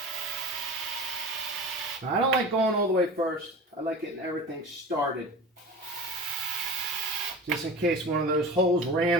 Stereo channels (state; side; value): normal; both; correlation 0.32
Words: Now, I don't like going all the way first. I like getting everything started. Just in case one of those holes